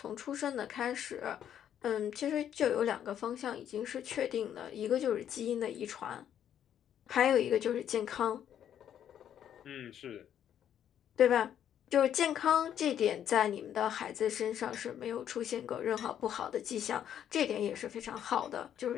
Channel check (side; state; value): right; quieter; 9.9 dB